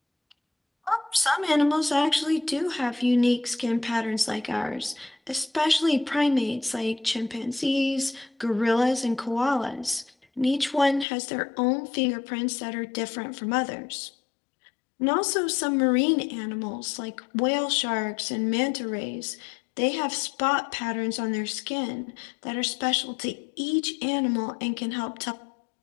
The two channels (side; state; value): right; drops out; at 11.1 s